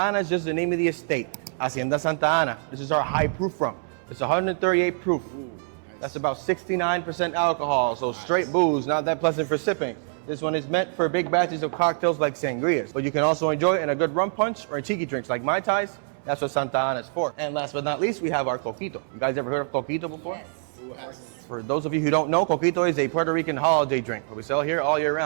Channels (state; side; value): silent; left; 62 dB below the other